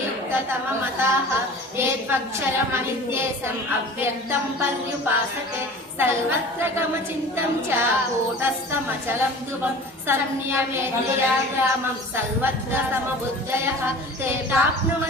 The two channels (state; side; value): normal; both; correlation 0.41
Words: युक्ततममताः। ये त्वक्षरमनित्येशम् अव्यक्तं पर्युपासते सर्वत्र गमचिन्तं च कूटस्थमचलं ध्रुवं संयमेन्द्रिया ग्रामं सर्वत्र समबुद्धयः ते